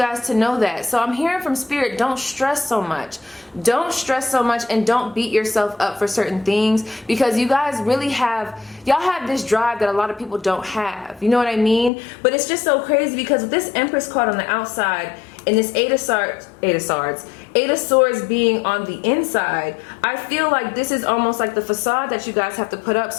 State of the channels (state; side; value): drops out; right; at 11.9 s